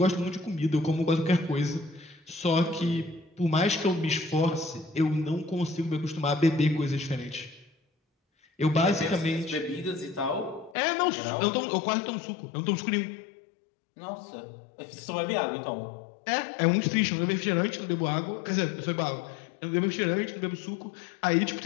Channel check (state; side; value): drops out; right; at 10.8 s